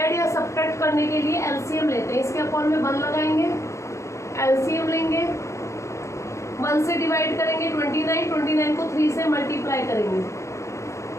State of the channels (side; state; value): right; late; 0.14 ms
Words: या सब्ट्रैक्ट करने के लिए एलसीएम लेते हैं, इसके अपॉन में 1 लगाएंगे, एलसीएम लेंगे, 1 से डिवाइड करेंगे 29 को 3 से मल्टीप्लाई करेंगे,